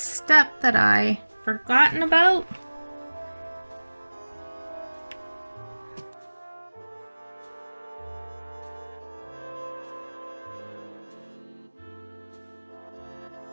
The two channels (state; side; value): inverted; both; correlation -1.00